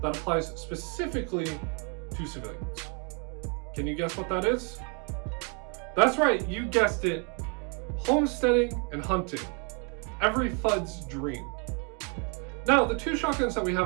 applies specifically to civilians. Can you guess what that is? That's right, you guessed it. Homesteading and hunting. Every FUD's dream. Now, the 2 shotguns that we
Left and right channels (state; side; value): quieter; left; 36.2 dB